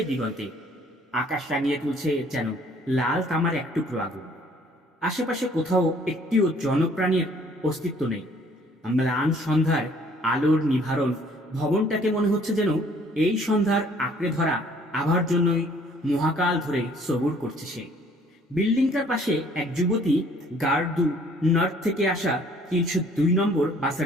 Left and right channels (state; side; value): normal; both; correlation 0.58